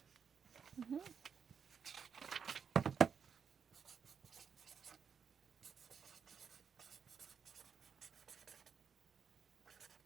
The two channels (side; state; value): left; quieter; 6.8 dB